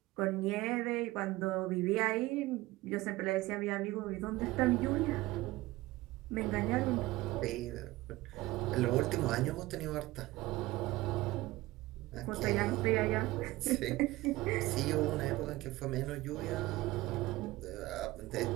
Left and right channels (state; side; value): quieter; left; 18.7 dB